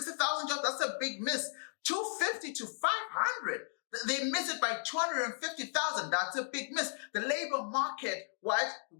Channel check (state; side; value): silent; right; digital silence